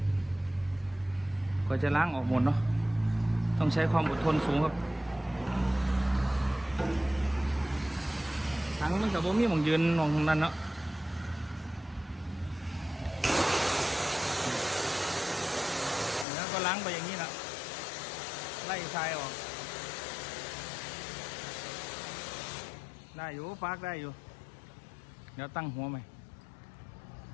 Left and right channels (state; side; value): drops out; right; at 16.2 s